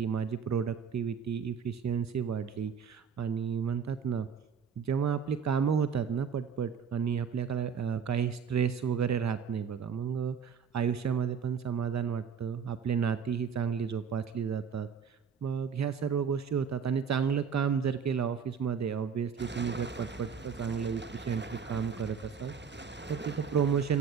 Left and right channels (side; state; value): left; quieter; 6.8 dB